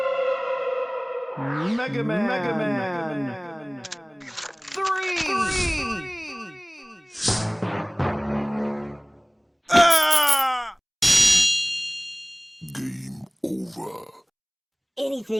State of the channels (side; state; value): both; identical; correlation 1.00